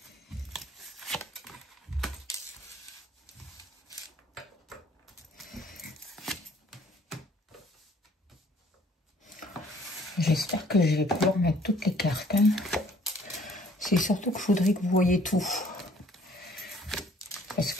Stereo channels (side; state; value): both; normal; correlation 0.59